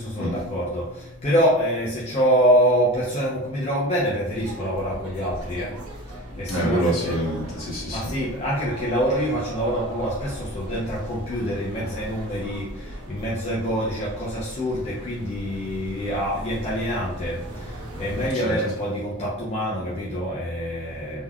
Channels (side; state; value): both; normal; correlation 0.36